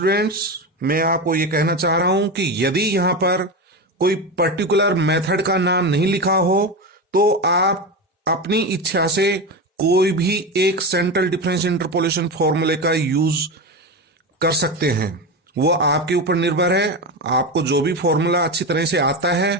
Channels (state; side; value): normal; both; correlation 0.19